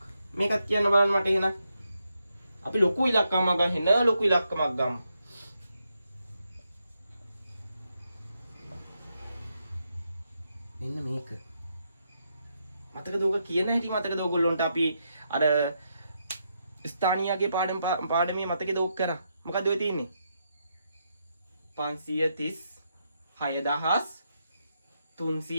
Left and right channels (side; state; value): both; inverted; correlation -0.82